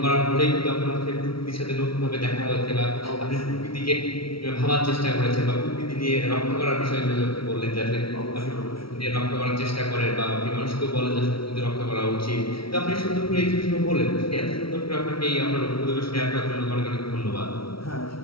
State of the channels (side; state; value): right; late; 0.75 ms